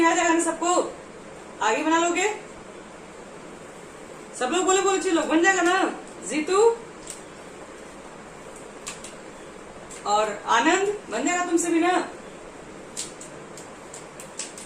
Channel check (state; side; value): identical; both; correlation 1.00